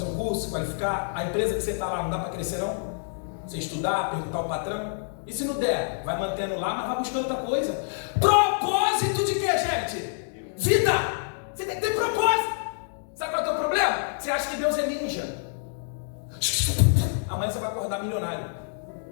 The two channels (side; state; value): right; silent; digital silence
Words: um curso, se qualificar? A empresa que você está lá não dá para crescer não? Você estudar, perguntar ao patrão? E se não der? Vai mantendo lá, mas vai buscando outra coisa. Propósito de quê, gente? Vida! Você tem que ter propósito! Sabe qual é o teu problema? Você acha que Deus é ninja. Amanhã você vai acordar milionário.